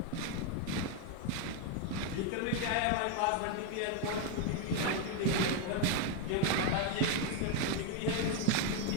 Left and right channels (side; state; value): both; different; correlation 0.01